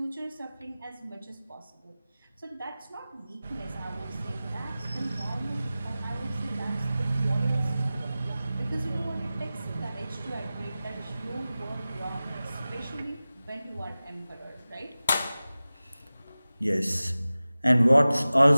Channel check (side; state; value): both; inverted; correlation -0.96